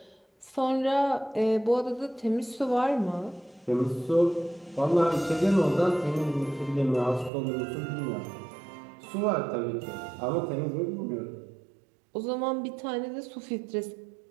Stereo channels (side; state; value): left; drops out; at 7.3 s